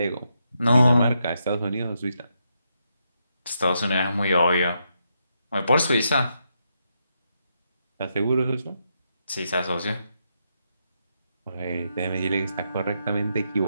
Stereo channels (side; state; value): both; inverted; correlation -0.81